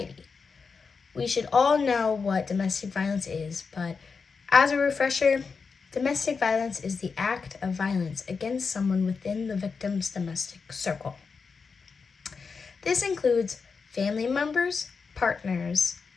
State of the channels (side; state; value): right; quieter; 5.1 dB